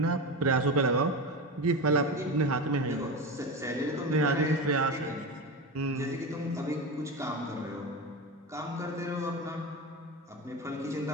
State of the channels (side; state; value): both; normal; correlation 0.22